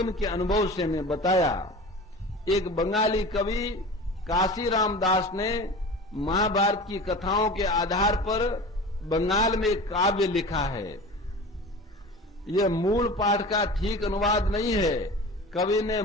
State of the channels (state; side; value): normal; both; correlation 0.35